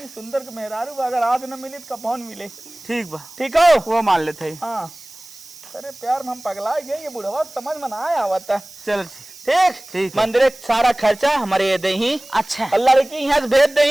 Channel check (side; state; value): right; noise; hiss, 19 dB below the sound